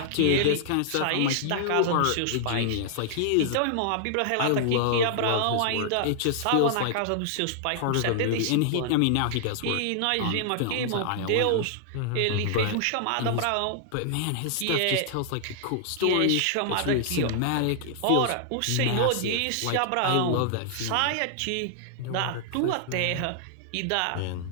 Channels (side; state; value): both; different; correlation -0.01